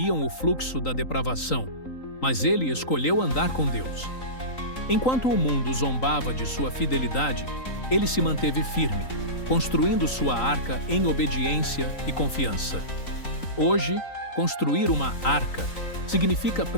o fluxo da depravação, mas ele escolheu andar com Deus. Enquanto o mundo zombava de sua fidelidade, ele se manteve firme, construindo sua arca em obediência e confiança. Hoje, construir uma arca significa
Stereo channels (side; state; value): right; late; 3.9 ms